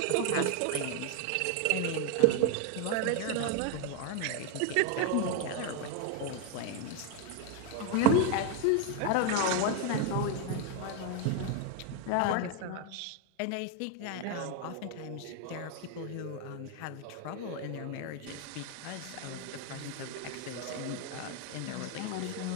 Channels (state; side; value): different; both; correlation 0.01